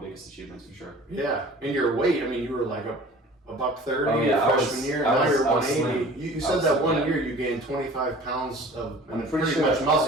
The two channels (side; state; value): both; normal; correlation 0.45